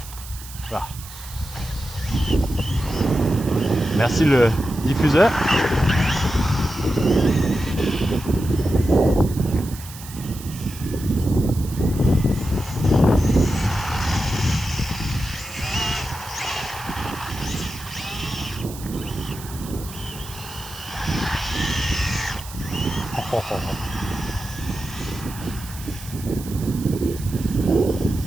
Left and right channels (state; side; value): noise; right; hiss, 15 dB below the sound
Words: ah. Merci le diffuseur.